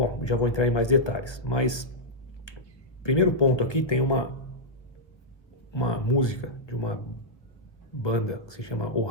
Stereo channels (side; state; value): right; late; 1.1 ms